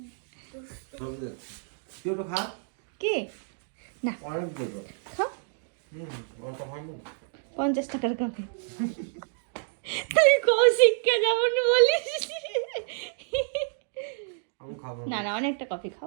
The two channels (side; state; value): left; silent; digital silence